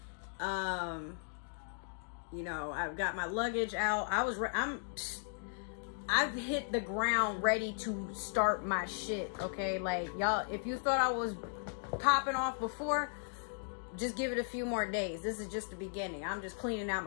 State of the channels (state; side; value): silent; right; digital silence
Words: You know, I've got my luggage out. I've hit the ground ready to start my shit, okay? Like, y'all, if you thought I was popping off before, just give it a few more days. This is just the beginning. I'm just cleaning out